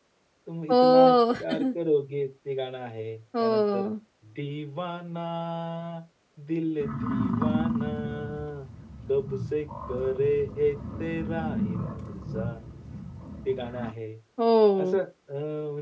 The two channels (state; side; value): identical; both; correlation 1.00